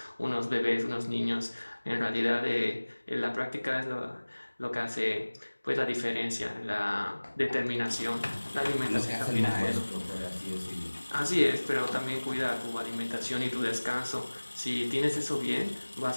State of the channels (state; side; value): inverted; both; correlation -1.00